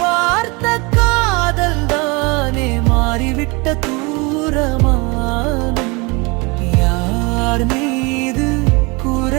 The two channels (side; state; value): left; quieter; 27.6 dB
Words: பார்த்த காதல் தானே மாறிவிட்ட தூரமானம். யார் மீது